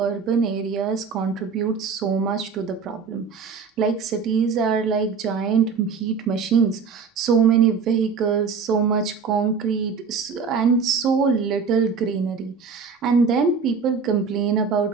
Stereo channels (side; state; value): left; quieter; 5.5 dB